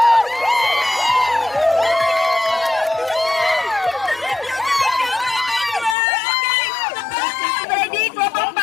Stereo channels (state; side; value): drops out; right; at 6.0 s